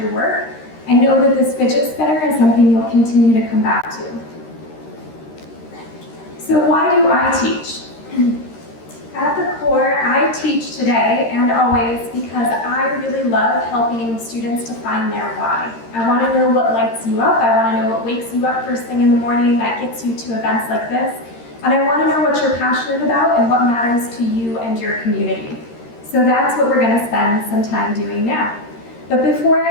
work. I know that this fidget spinner is something you'll continue to come back to. So why do I teach? At the core, I teach today and always because I really love helping students to find their why. I want to know what lights you up. I want to know what wakes you up first thing in the morning that gets you to events like this. And I want to know what you're passionate about and what matters to you and your community. So that's what we're going to spend some time doing now. But before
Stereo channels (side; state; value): right; late; 13 ms